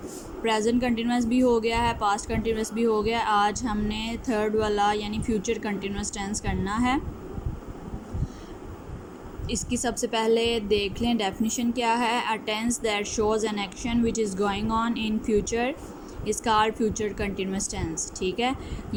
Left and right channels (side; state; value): both; identical; correlation 1.00